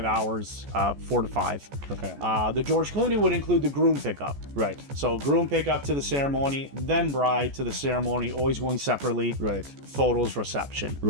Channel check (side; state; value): left; late; 14 ms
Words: hours, 4 to 5. Okay. The George Clooney would include the groom pickup. Right. So groom pickup to the ceremony, then bride to the ceremony, always going separately. Right. Photos, reception.